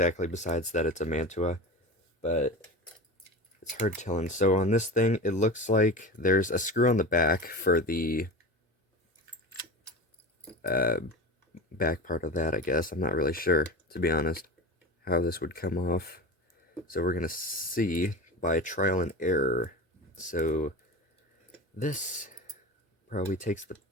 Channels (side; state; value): both; normal; correlation 0.29